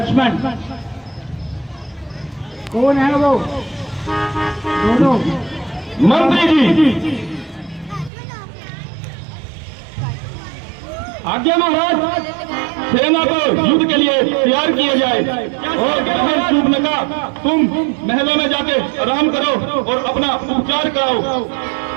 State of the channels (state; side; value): drops out; left; at 8.1 s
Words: कौन है वो दोनों? मंत्री जी। आज्ञा महाराज, सेना को युद्ध के लिए तैयार किया जाए। और सूपनका, तुम महलों में जाके आराम करो और अपना उपचार कराओ।